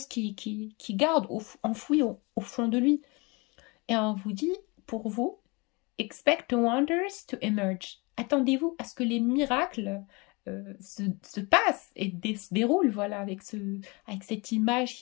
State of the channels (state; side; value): quieter; right; 27.3 dB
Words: qui garde enfouies au fond de lui. Et on vous dit, pour vous, expect the wonders to emerge. Attendez-vous à ce que les miracles se passent et se déroulent, voilà, avec cette